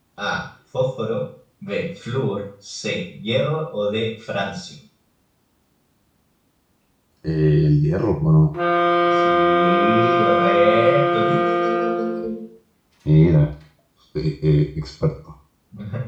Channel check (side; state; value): both; identical; correlation 1.00